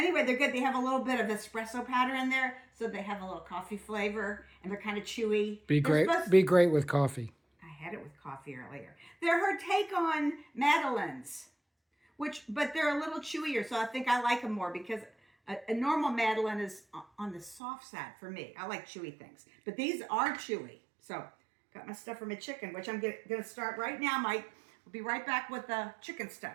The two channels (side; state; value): left; drops out; at 17.6 s